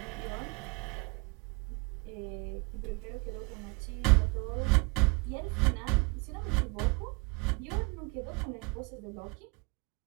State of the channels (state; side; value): quieter; left; 29.1 dB